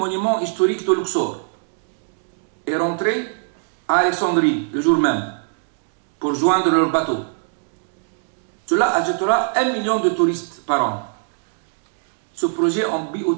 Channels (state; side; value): silent; left; digital silence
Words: historiques de Luxor et rentrer à Alexandrie le jour même pour joindre leur bateau. Cela ajoutera 1 million de touristes par an. Ce projet en